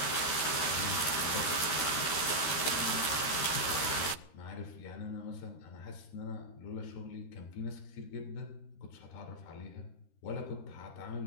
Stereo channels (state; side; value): late; right; 13 ms